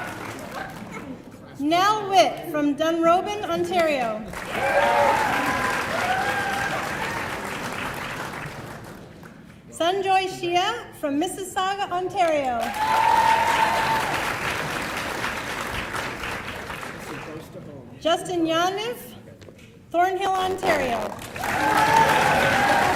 Nell Witt from Dunrobin, Ontario. Sanjoy Shia from Mississauga, Ontario. Justin Yaniv, Thornhill, Ontario.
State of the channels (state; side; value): identical; both; correlation 1.00